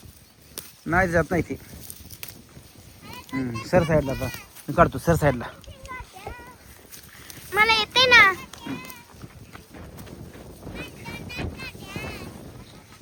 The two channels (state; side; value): identical; both; correlation 1.00